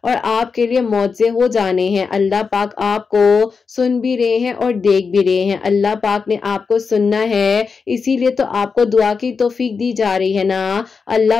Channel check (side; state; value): right; quieter; 5.2 dB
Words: और आपके लिए मौजे हो जाने हैं। अल्लाह पाक आपको सुन भी रहे हैं और देख भी रहे हैं। अल्लाह पाक ने आपको सुनना है, इसीलिए तो आपको दुआ की तौफीक दी जा रही है ना। अल्लाह